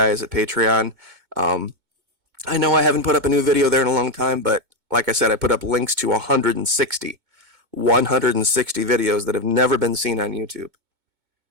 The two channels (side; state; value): left; late; 2.2 ms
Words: at Patreon. I know I haven't put up a new video there in a long time, but like I said, I put up links to 160 videos that have never been seen on YouTube.